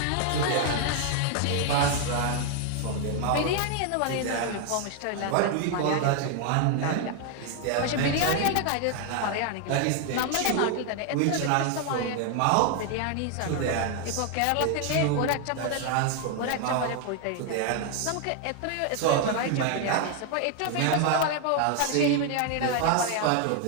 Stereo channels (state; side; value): different; both; correlation 0.00